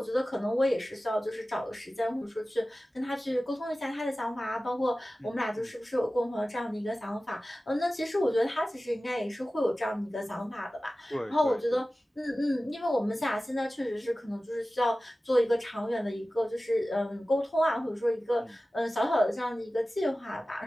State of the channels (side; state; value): both; normal; correlation 0.96